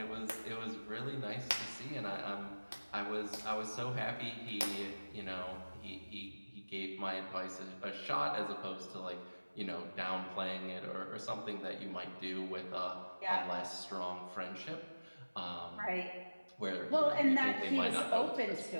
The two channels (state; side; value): inverted; both; correlation -1.00